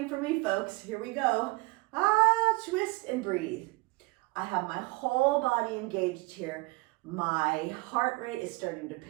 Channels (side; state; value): left; quieter; 25.4 dB